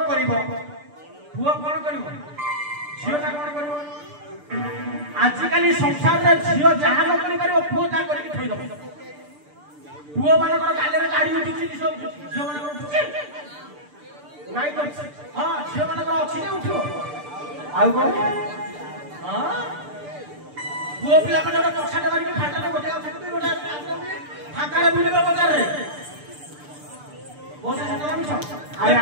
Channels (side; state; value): left; late; 6.8 ms